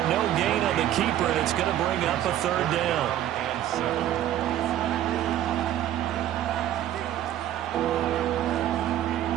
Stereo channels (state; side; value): quieter; left; 12.2 dB